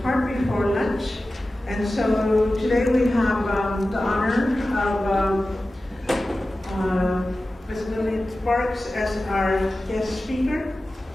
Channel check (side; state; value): both; normal; correlation 0.95